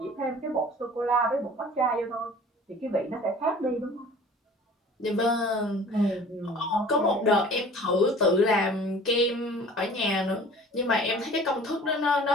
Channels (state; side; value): normal; both; correlation 0.46